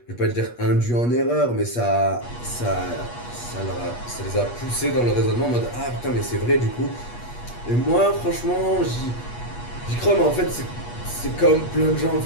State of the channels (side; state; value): right; late; 8.3 ms